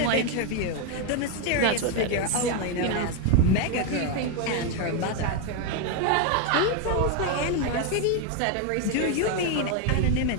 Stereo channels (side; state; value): both; different; correlation 0.01